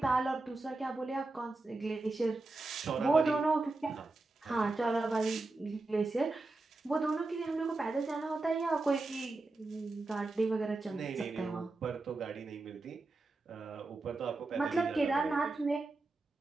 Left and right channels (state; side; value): quieter; left; 3.3 dB